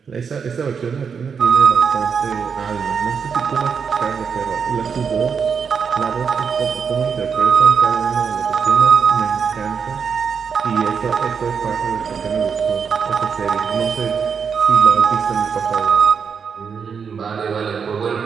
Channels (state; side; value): quieter; left; 6.3 dB